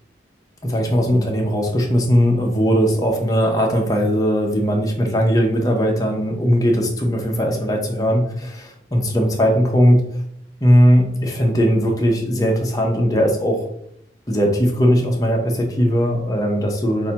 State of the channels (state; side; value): normal; both; correlation 0.83